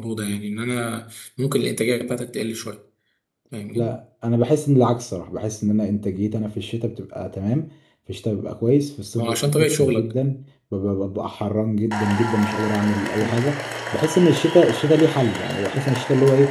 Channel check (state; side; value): identical; both; correlation 1.00